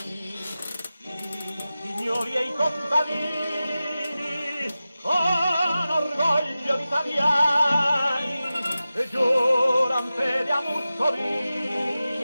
i signori e i contadini, con orgoglio italiani, giuran fede a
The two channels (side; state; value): both; inverted; correlation -0.95